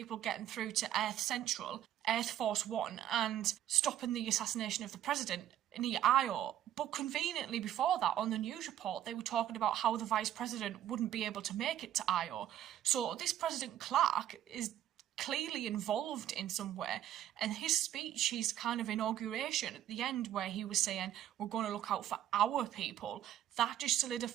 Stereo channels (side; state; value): left; quieter; 11.6 dB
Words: getting through to Earth Central, Earth Force 1, and stopping the assassination of the president near Io. But conveniently before that, on the news report, they were talking about how the vice president wouldn't be able to make it to Io. So this President Clark is clearly involved in some way, and his speech, his kind of inauguration at the end where he was saying we're going to look out for our people, that just